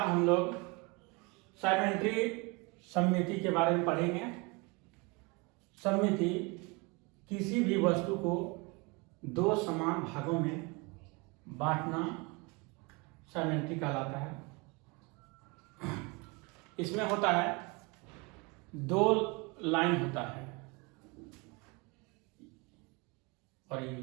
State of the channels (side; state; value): left; quieter; 28.2 dB